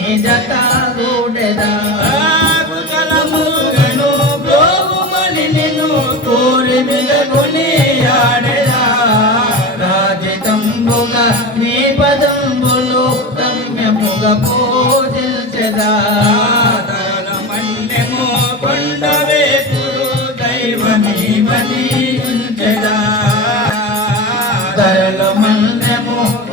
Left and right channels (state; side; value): normal; both; correlation 0.26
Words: జతగూడెదా కుశలముగను బ్రోగుమని నిన్ను కోరి మిగకుని ఆడెదా రాజితంబుగా మీ పదంబులు రమ్యముగా పూజించెదా మన్యము కొండవేపురు దైవమీవని ఉంచెదా ధరలు మన్యము